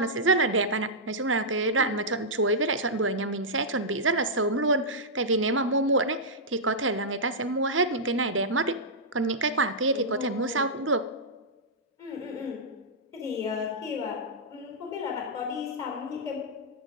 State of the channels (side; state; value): both; normal; correlation -0.11